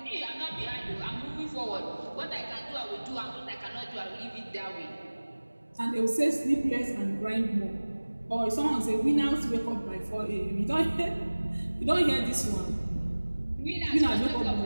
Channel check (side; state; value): both; inverted; correlation -1.00